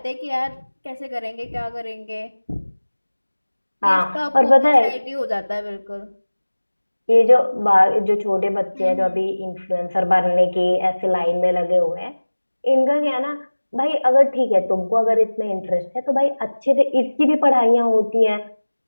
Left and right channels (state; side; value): inverted; both; correlation -1.00